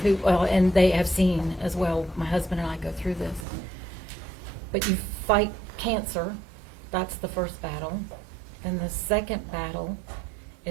who, well, and they have seen as well, my husband and I go through this. But you fight cancer, that's the first battle. And the second battle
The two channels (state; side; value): drops out; left; at 3.5 s